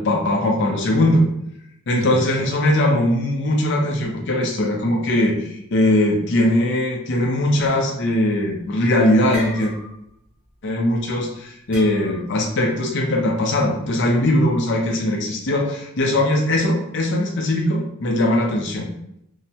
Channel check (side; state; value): both; normal; correlation 0.51